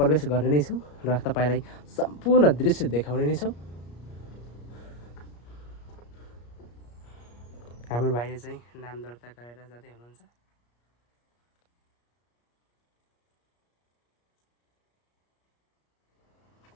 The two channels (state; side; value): late; right; 34 ms